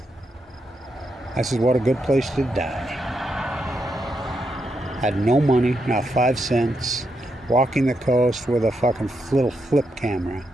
I said, what a good place to die. Had no money, not 5 cents. Walking the coast with a fucking little flip camera.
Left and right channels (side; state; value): both; normal; correlation 0.82